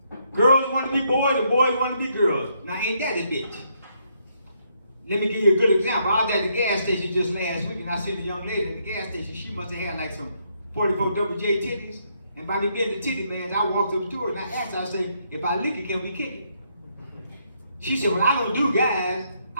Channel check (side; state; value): both; inverted; correlation -0.74